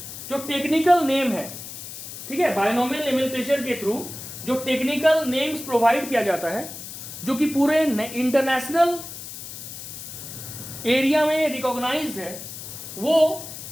जो टेक्निकल नेम है, ठीक है, बायनोमियल नॉमेनक्लेचर के थ्रू जो टेक्निकल नेम्स प्रोवाइड किया जाता है, जो कि पूरे इंटरनेशनल एरिया में रिकॉग्नाइज्ड है, वो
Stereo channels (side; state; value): left; noise; hiss, 11 dB below the sound